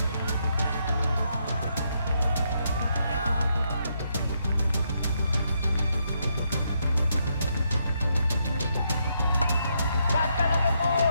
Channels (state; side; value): inverted; both; correlation -0.78